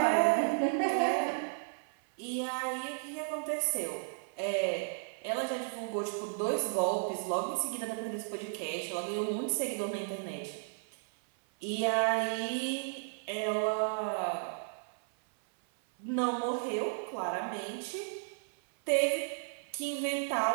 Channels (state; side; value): silent; left; 55 dB below the other